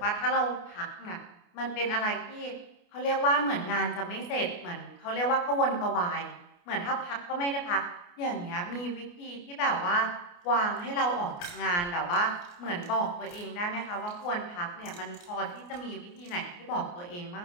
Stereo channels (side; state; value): right; late; 29 ms